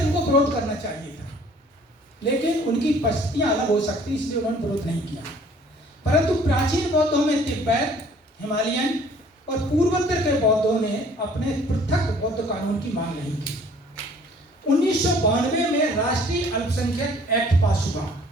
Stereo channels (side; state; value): both; normal; correlation 0.55